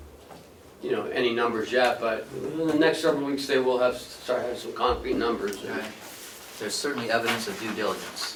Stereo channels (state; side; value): identical; both; correlation 1.00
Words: numbers yet, but in the next several weeks they will start having some concrete numbers. Right. There's certainly evidence of due diligence.